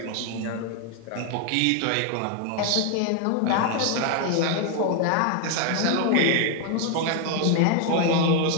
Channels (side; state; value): both; different; correlation 0.01